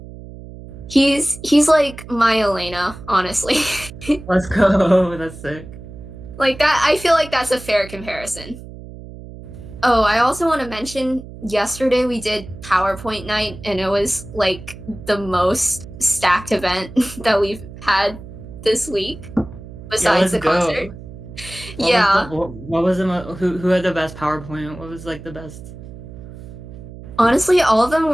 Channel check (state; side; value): noise; right; hum, 15 dB below the sound